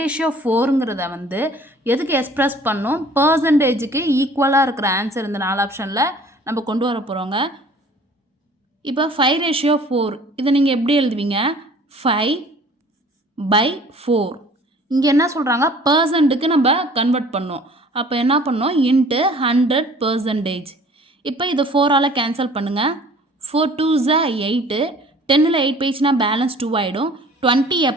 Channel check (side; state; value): both; normal; correlation 0.50